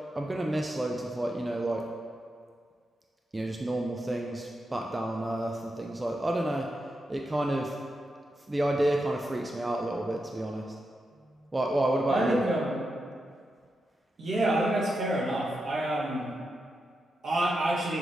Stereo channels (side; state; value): both; normal; correlation 0.87